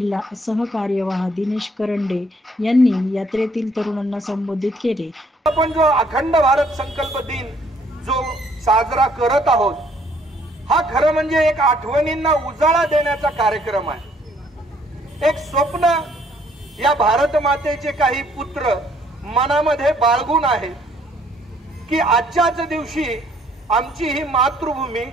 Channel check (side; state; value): both; normal; correlation 0.64